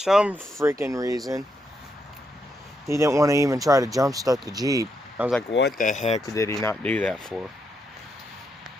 freaking reason, he didn't want to even try to jump start the Jeep. I was like, what the heck did he not do that for?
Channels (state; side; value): normal; both; correlation 0.80